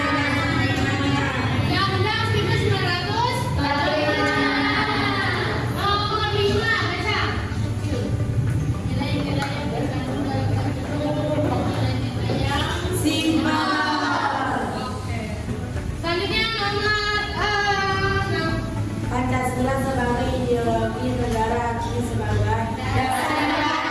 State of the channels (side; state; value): both; identical; correlation 1.00